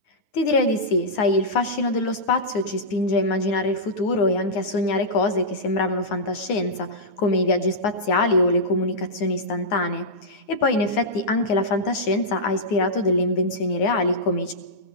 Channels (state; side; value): late; right; 9.5 ms